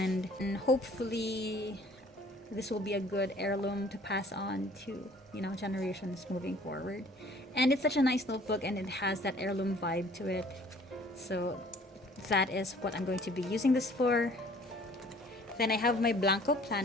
hopefully this will be a good heirloom to pass on to, you know, generations moving forward. And it's such a nice notebook, and it has that heirloom vibe to it. So that is what I'm going to be using this for. Then I have my Blanco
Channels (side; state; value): both; normal; correlation 0.54